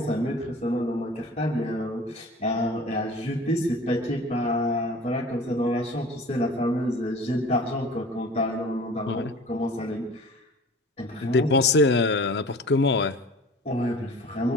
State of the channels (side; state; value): both; normal; correlation 0.42